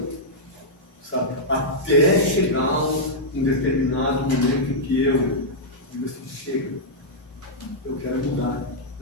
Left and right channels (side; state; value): both; normal; correlation -0.08